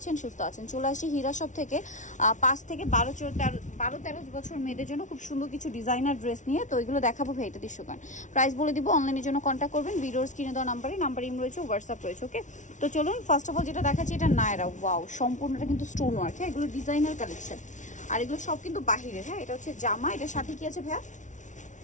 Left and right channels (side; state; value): right; late; 0.36 ms